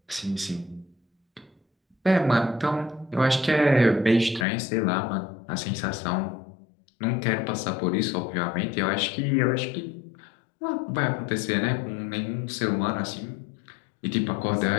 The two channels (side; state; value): right; drops out; at 4.5 s